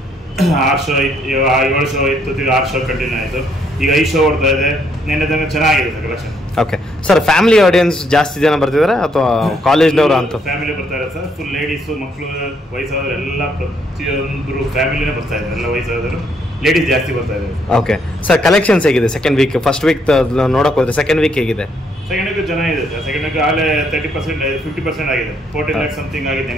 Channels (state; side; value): normal; both; correlation 0.71